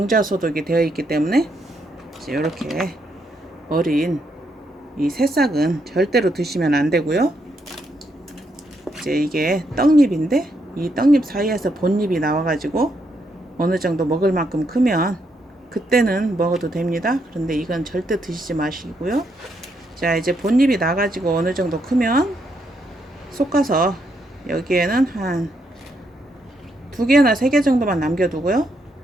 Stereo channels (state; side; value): normal; both; correlation 0.77